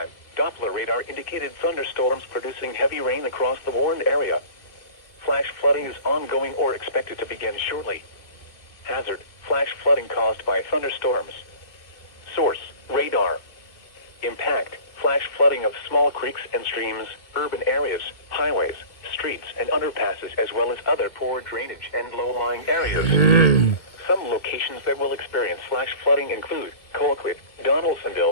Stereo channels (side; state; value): right; late; 2.0 ms